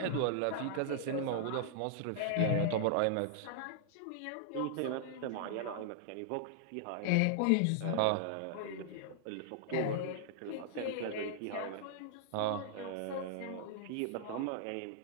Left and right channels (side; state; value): both; different; correlation -0.01